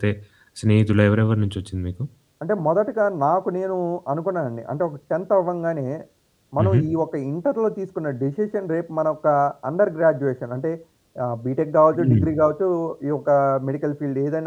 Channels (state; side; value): identical; both; correlation 1.00